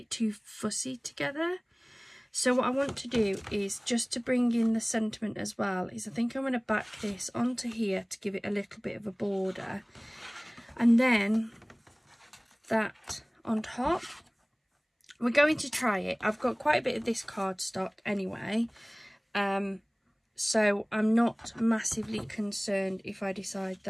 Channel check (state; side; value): identical; both; correlation 1.00